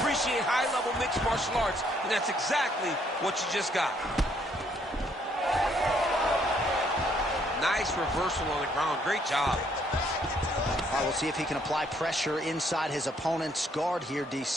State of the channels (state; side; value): normal; both; correlation 0.68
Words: high-level mixed martial arts, and that's exactly what you just got. Nice reversal on the ground. Great job. All right, we'll see if he can apply pressure inside his opponent's guard here,